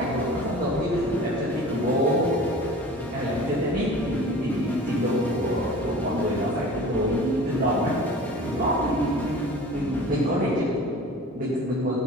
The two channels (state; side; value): normal; both; correlation 0.41